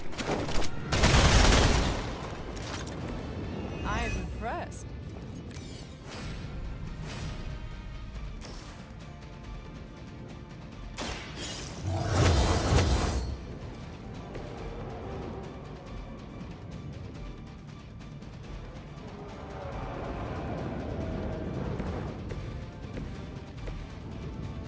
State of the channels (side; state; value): both; identical; correlation 1.00